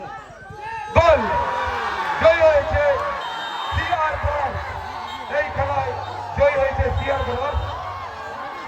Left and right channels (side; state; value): both; identical; correlation 1.00